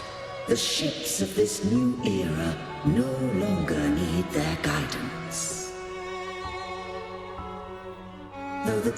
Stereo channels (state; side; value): identical; both; correlation 1.00